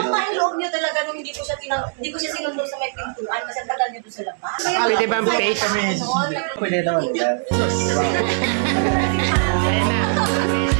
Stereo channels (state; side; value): silent; left; 65 dB below the other